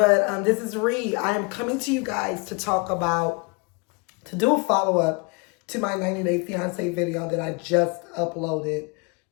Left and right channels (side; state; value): right; quieter; 31.1 dB